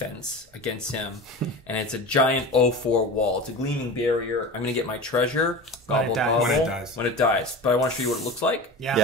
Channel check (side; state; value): both; normal; correlation 0.31